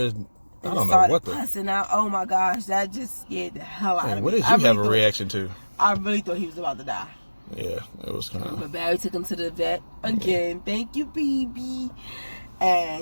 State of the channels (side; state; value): both; inverted; correlation -1.00